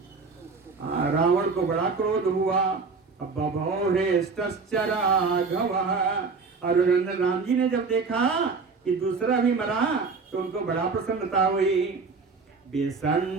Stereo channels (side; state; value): left; quieter; 4.6 dB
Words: रावण को बड़ा क्रोध हुआ। बभौ हृष्टश्च राघवः, और राम जी ने जब देखा कि दूसरा भी मरा तो उनको बड़ा प्रसन्नता हुई।